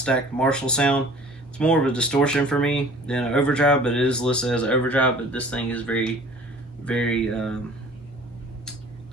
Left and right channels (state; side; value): normal; both; correlation 0.48